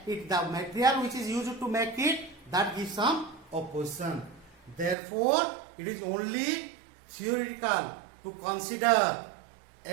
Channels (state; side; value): drops out; left; at 5.0 s